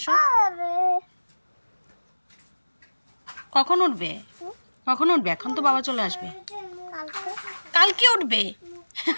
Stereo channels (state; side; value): inverted; both; correlation -1.00